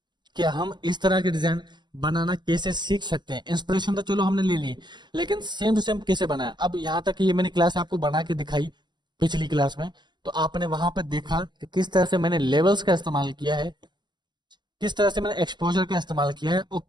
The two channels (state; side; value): late; left; 0.21 ms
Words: कि हम इस तरह के डिजाइन बनाना कैसे सीख सकते हैं। इंस्पिरेशन तो चलो हमने ले ली, लेकिन सेम टू सेम कैसे बनाया। अब यहाँ तक ये मैंने क्लास आपको बना के दिखाई पिछली क्लास में, तो आपने वहां पर देखा कि किस तरह से मैंने लेवल्स का इस्तेमाल किया है, किस तरह से मैंने एक्सपोजर का इस्तेमाल किया है और